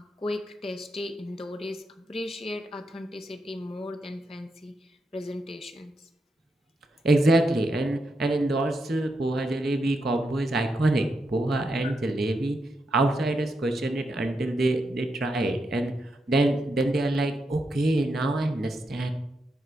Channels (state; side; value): normal; both; correlation 0.83